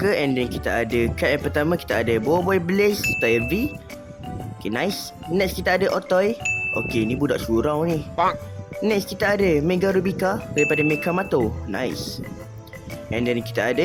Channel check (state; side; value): identical; both; correlation 1.00